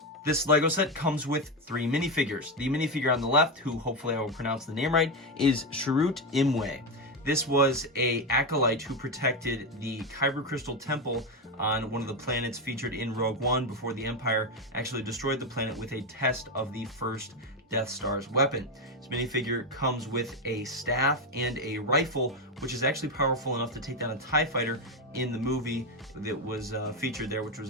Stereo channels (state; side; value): normal; both; correlation 0.11